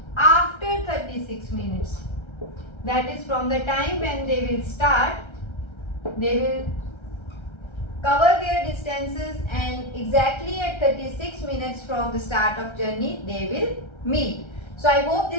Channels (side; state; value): right; late; 1.3 ms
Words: after 36 minutes. That is from the time when they will start, they will cover their distances, and exactly at 36 minutes from the start of journey they will meet. So I hope